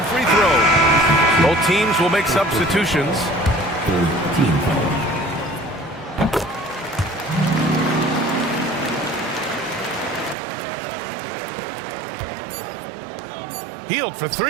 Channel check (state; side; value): drops out; left; at 10.4 s